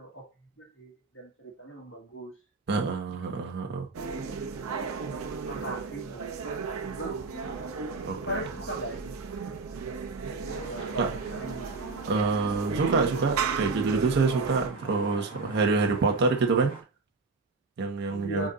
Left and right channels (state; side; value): quieter; left; 3.9 dB